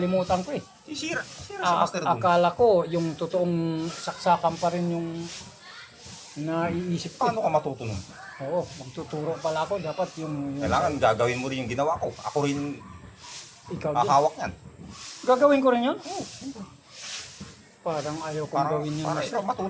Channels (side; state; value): both; identical; correlation 1.00